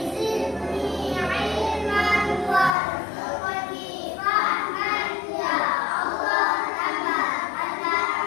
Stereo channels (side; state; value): right; drops out; at 2.8 s